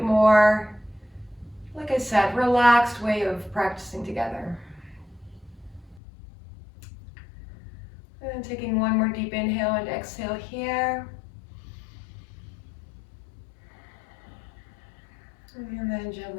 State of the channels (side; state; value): right; drops out; at 6.0 s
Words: more, like I said, relaxed way of practicing together. And taking one more deep inhale and exhale here. And then